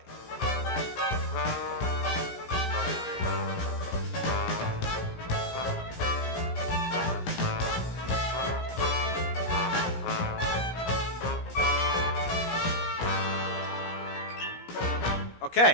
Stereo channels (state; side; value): late; right; 17 ms